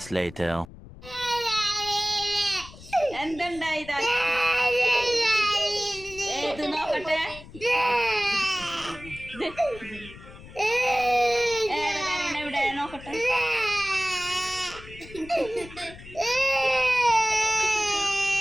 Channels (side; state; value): left; noise; rumble, 17 dB below the sound